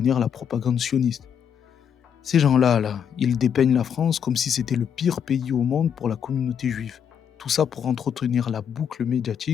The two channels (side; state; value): right; quieter; 8.1 dB